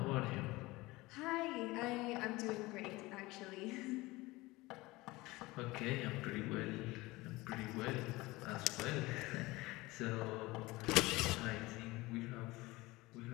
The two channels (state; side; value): quieter; right; 20.9 dB